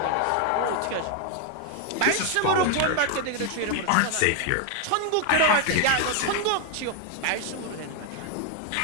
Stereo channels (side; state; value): both; different; correlation 0.00